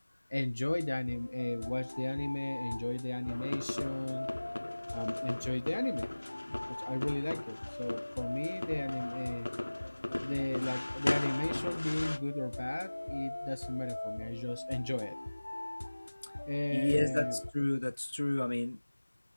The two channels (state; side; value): inverted; both; correlation -1.00